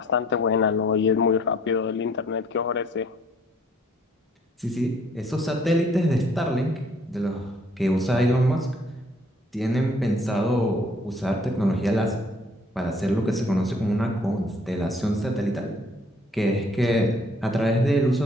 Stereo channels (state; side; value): normal; both; correlation 0.60